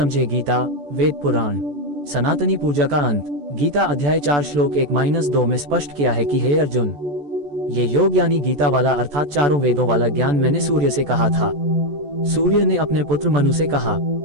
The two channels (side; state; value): left; late; 14 ms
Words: गीता वेद पुराण। सनातनी पूजा का अंत। गीता अध्याय 4 श्लोक 1-2 में स्पष्ट किया है कि हे अर्जुन, ये योग यानी गीता वाला अर्थात चारों वेदों वाला ज्ञान मैंने सूर्य से कहा था। सूर्य ने अपने पुत्र मनु से कहा,